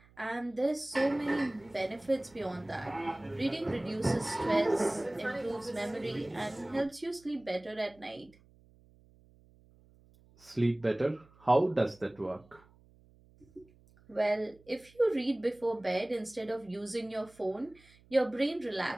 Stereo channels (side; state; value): right; noise; hum, 28 dB below the sound